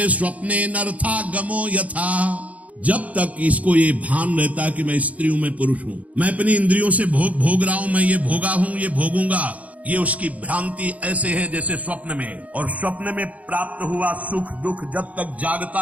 स्वप्ने नर्थागमो यथा। जब तक इसको ये भान रहता है कि मैं स्त्री हूं, मैं पुरुष हूं, मैं अपनी इंद्रियों से भोग रहा हूं, मैं ये भोगा हूं, ये भोगूंगा, ये उसकी भ्रांति ऐसे है जैसे स्वप्न में। और स्वप्न में प्राप्त हुआ सुख दुख जब तक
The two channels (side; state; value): left; late; 0.070 ms